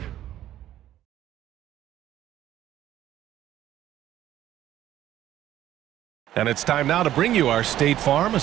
And it's time now to bring you our State Farm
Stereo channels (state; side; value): quieter; left; 12.6 dB